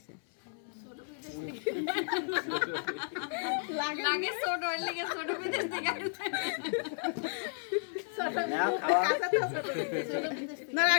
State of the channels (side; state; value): right; silent; 56 dB below the other